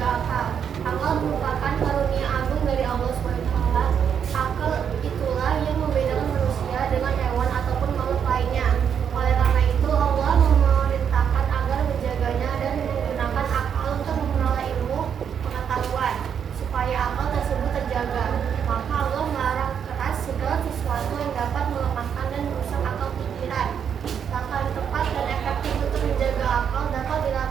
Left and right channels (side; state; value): left; quieter; 7.9 dB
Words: akal. Akal merupakan karunia agung dari Allah SWT. Akal itulah yang membedakan manusia dengan hewan ataupun makhluk lainnya. Oleh karena itu Allah memerintahkan agar menjaganya dan menggunakan akal untuk memperoleh ilmu pengetahuan supaya akal tersebut terjaga. Maka Allah melarang keras segala sesuatu yang dapat melemahkan dan merusak akal pikiran. Langkah yang tepat dan efektif untuk menjaga akal dapat